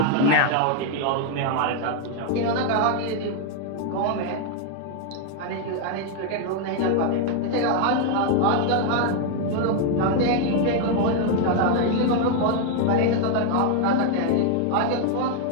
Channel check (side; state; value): both; different; correlation 0.00